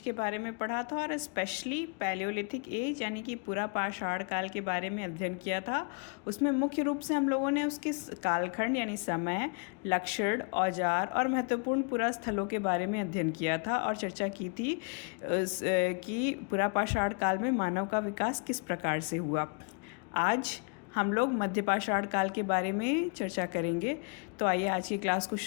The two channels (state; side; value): quieter; right; 35.9 dB